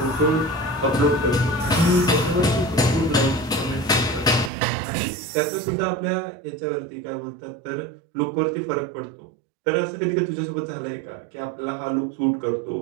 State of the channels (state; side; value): drops out; left; at 4.5 s